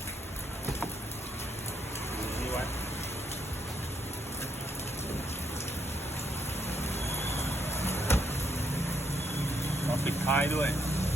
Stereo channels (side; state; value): both; normal; correlation 0.76